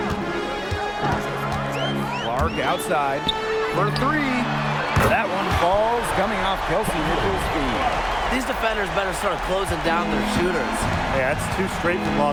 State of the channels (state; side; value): identical; both; correlation 1.00